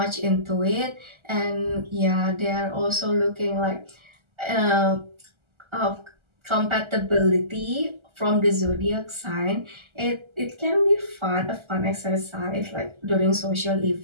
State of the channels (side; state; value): left; late; 1.3 ms